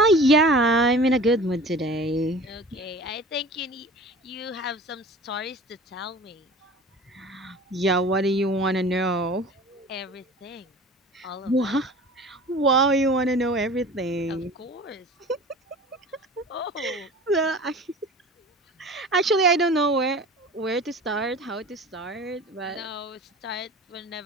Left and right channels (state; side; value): normal; both; correlation 0.40